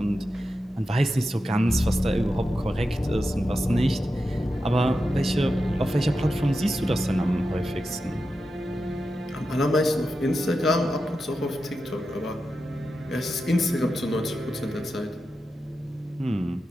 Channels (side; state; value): both; normal; correlation 0.90